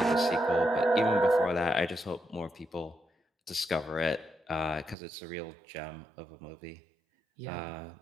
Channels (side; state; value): left; drops out; at 5.0 s